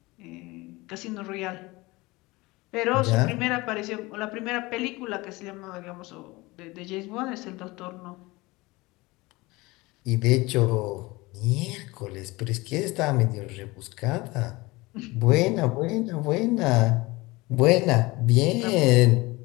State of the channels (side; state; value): right; quieter; 22.2 dB